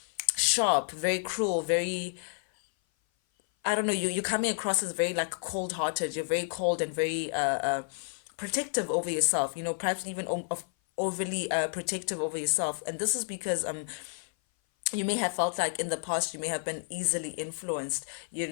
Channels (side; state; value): right; silent; 56 dB below the other